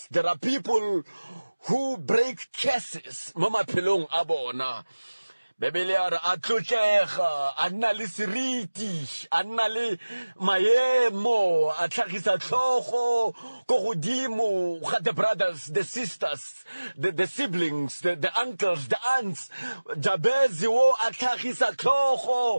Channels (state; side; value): inverted; both; correlation -1.00